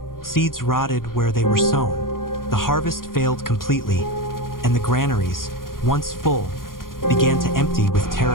Seeds rotted where they were sown. The harvest failed completely, and the granaries, once full, began to empty with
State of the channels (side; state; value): right; late; 0.91 ms